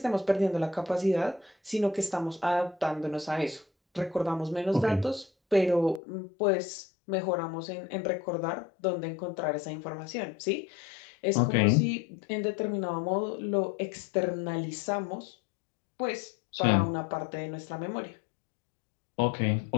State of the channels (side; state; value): right; drops out; at 6.0 s